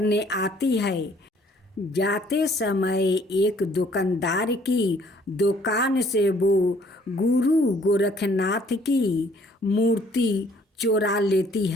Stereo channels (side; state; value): both; normal; correlation 0.60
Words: आती है। जाते समय एक दुकानदार की दुकान से वो गुरु गोरखनाथ की मूर्ति चुरा लेती